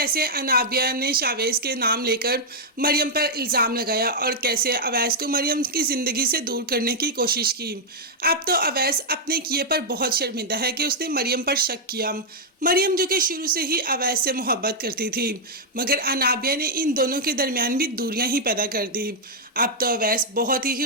अनाबिया ने शावेज के नाम लेकर मरियम पर इल्ज़ाम लगाया और कैसे अवैस को मरियम की ज़िंदगी से दूर करने की कोशिश की। अब तो अवैस अपने किए पर बहुत शर्मिंदा है कि उसने मरियम पर शक किया। मरियम जो कि शुरू से ही अवैस से मोहब्बत करती थी, मगर अनाबिया ने इन दोनों के दरमियान भी दूरियां ही पैदा कर दी। अब तो अवैस बहुत ही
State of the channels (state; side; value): normal; both; correlation -0.04